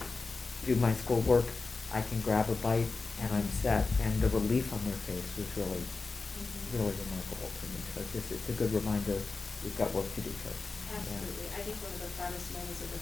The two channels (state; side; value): quieter; right; 4.0 dB